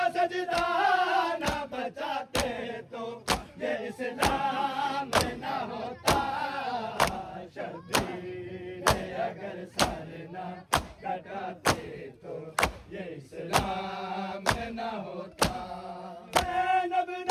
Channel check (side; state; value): both; identical; correlation 1.00